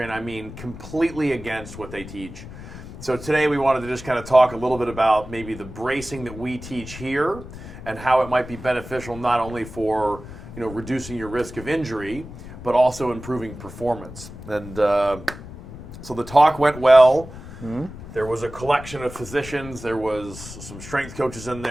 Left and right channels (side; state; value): left; noise; rumble, 13 dB below the sound